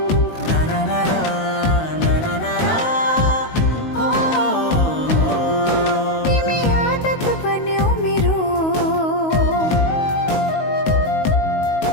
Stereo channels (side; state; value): right; late; 19 ms